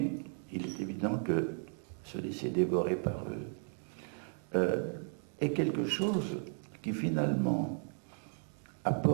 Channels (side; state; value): left; silent; 54 dB below the other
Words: il est évident que se laisser dévorer par eux est quelque chose qui finalement